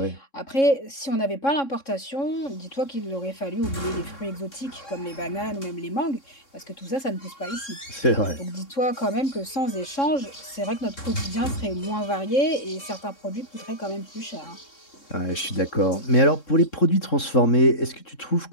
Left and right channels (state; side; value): late; right; 3.7 ms